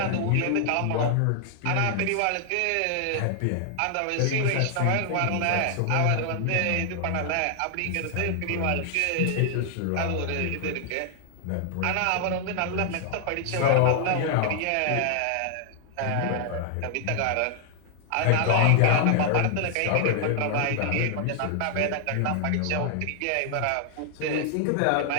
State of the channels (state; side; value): different; both; correlation -0.01